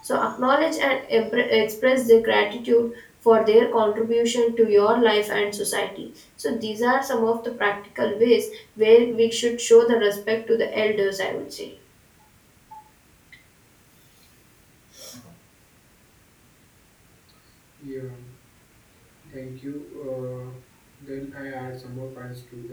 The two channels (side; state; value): both; identical; correlation 1.00